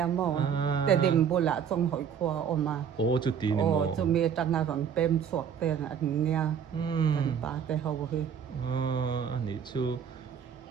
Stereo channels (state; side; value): quieter; left; 7.8 dB